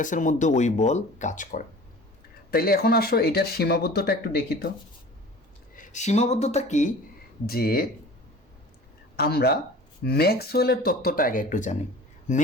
মধ্যে ওই বল কাজ করে। তাইলে এখন আসো এটার সীমাবদ্ধতা একটু দেখি তো। সীমাবদ্ধতা কি, যে আমরা ম্যাক্সওয়েলের তত্ত্বটা আগে একটু জানি।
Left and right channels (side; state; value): both; normal; correlation 0.42